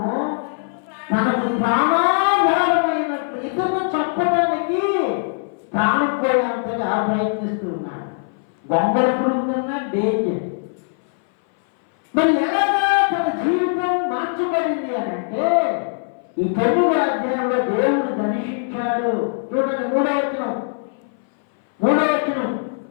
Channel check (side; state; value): right; silent; 60 dB below the other